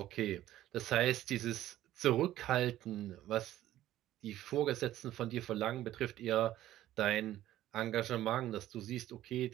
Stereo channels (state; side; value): quieter; left; 13.8 dB